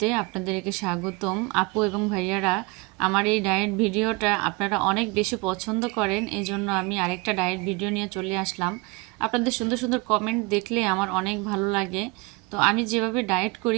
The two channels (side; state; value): left; quieter; 24.8 dB